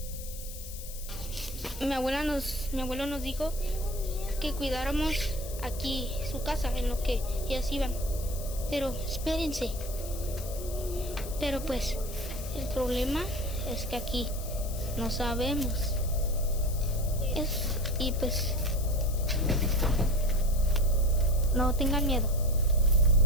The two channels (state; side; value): noise; left; hiss, 13 dB below the sound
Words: Mi abuelo nos dijo que cuidáramos aquí su casa en lo que ellas iban. Pero espérense. Pero pues el problema es que aquí no sabemos. Y pues no tengan miedo.